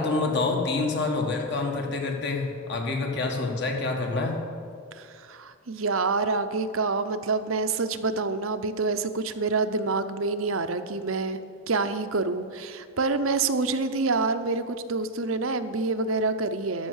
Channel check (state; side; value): normal; both; correlation -0.04